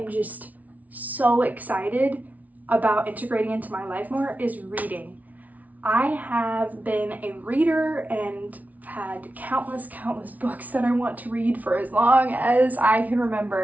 just so excited about integrating into my life more is reading. I have been a reader and had countless books that I want to read for as long as I can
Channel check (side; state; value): left; late; 0.073 ms